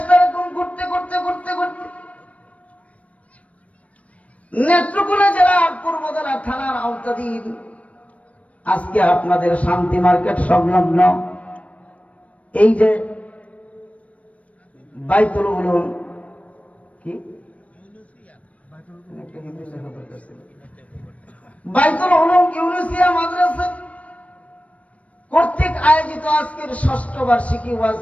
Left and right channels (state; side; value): late; right; 0.065 ms